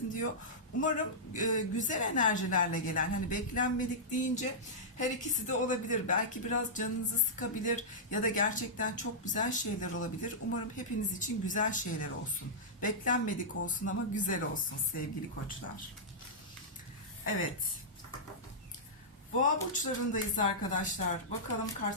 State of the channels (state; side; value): normal; both; correlation -0.13